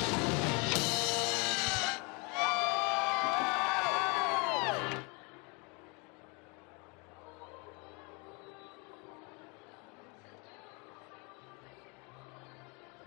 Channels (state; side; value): quieter; right; 31.0 dB